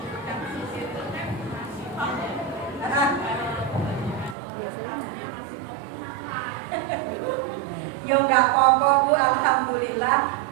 Yo nggak apa-apa Bu, alhamdulillah.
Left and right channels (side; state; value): left; drops out; at 4.4 s